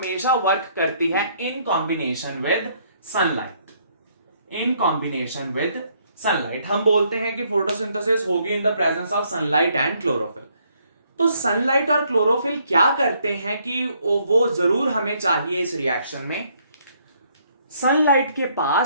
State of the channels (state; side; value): inverted; both; correlation -0.68